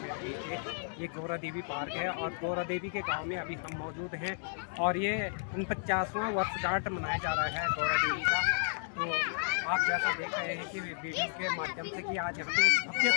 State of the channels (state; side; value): silent; right; digital silence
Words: मेरे पीछे ये गौरा देवी पार्क है और गौरा देवी के गांव में अभी हम मौजूद हैं और ये 49वां वर्षगांठ मनाया जा रहा है गौरा देवी का। तो आप जैसा देख रहे हैं कि वीडियो के माध्यम से कि आज यहाँ पे एक भव्य